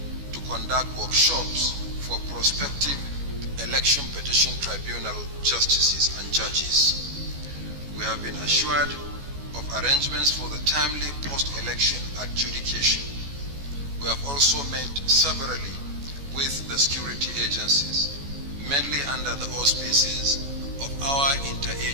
to conduct workshops for prospective election petition tribunal justices and judges. We have been assured of arrangements for the timely post-election adjudication. We have also met severally with the security agencies, mainly under the auspices of our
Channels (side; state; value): left; late; 14 ms